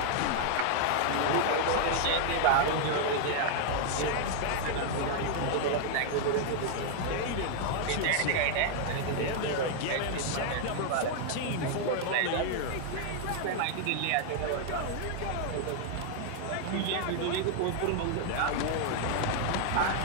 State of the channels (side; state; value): both; different; correlation 0.00